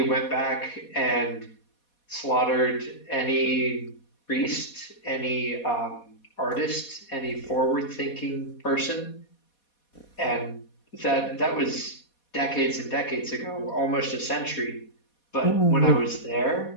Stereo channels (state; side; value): late; right; 4.2 ms